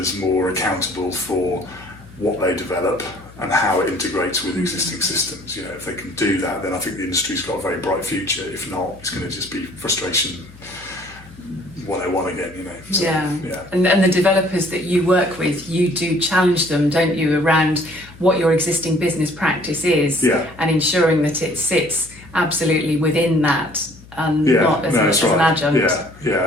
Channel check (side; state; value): left; noise; hum, 21 dB below the sound